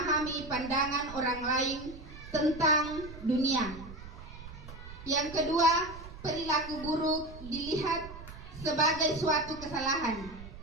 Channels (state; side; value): noise; right; rumble, 14 dB below the sound